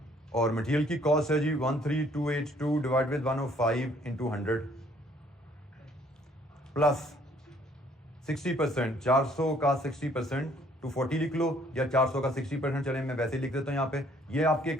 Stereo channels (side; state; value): both; normal; correlation 0.62